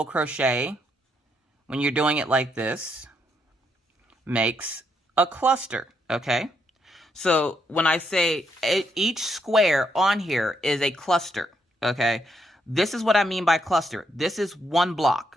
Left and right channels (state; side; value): normal; both; correlation 0.76